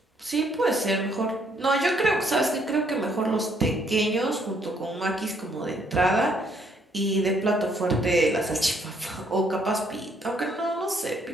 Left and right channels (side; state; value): both; normal; correlation 0.68